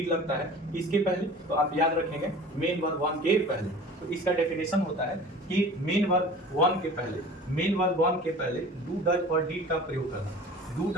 लगता है। इसके पहले तो आप याद रखेंगे मेन वर्ब वन के पहले। तो इसका डेफिनेशन होता है कि मेन वर्ब वन के पहले डू डज और डिड का प्रयोग करना। डू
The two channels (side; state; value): both; normal; correlation 0.42